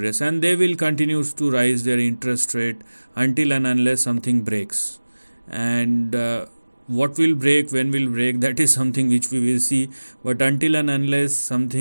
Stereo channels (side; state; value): both; inverted; correlation -1.00